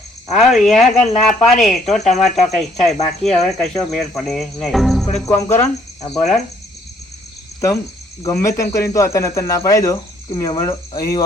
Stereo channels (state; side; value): normal; both; correlation 0.65